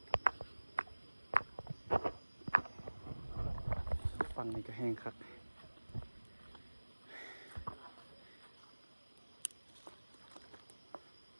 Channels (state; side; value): inverted; both; correlation -1.00